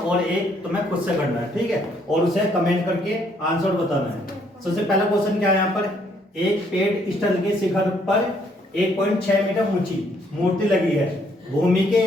एक तुम्हें खुद से करना है। ठीक है, और उसे कमेंट करके आंसर बताना है। सबसे पहला क्वेश्चन क्या है, यहाँ पर एक पेड़ स्थल के शिखर पर 1.6 मीटर ऊंची मूर्ति लगी है। भूमि के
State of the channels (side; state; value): both; normal; correlation 0.68